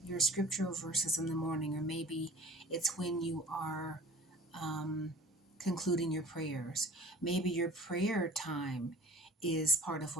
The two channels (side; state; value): both; normal; correlation 0.45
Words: your scriptural verses in the morning, or maybe it's when you are concluding your prayers. Maybe your prayer time is part of